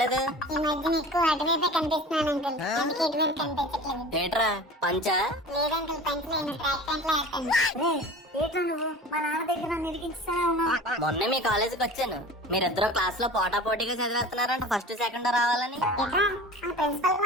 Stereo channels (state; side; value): normal; both; correlation 0.38